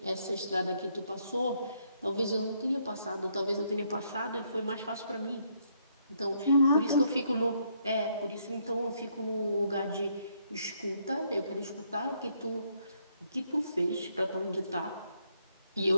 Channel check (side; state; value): both; inverted; correlation -0.72